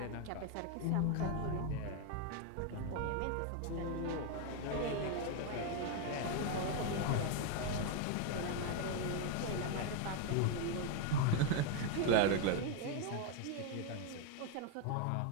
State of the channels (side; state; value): both; different; correlation 0.01